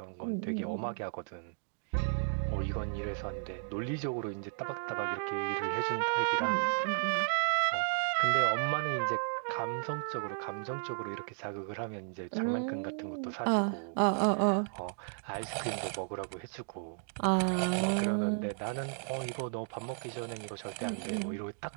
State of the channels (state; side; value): silent; left; digital silence